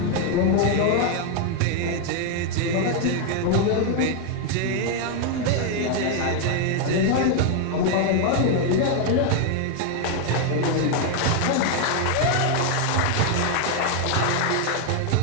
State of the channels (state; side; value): different; both; correlation 0.01